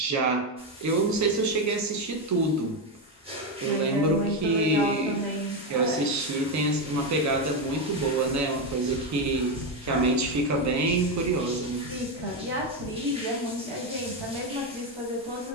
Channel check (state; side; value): normal; both; correlation 0.09